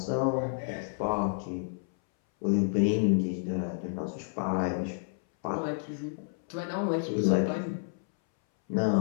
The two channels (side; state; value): right; silent; 58 dB below the other